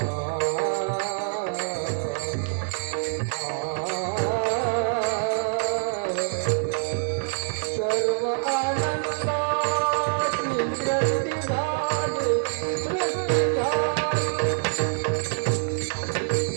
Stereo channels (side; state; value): left; silent; digital silence